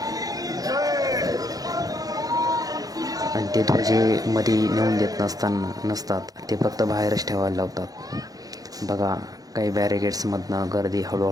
आणि ते ध्वजे मध्ये नेऊन देत नसतात, ते फक्त बाहेरच ठेवायला लावतात. बघा, काही बॅरिगेट्समधनं गर्दी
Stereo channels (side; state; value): left; late; 0.18 ms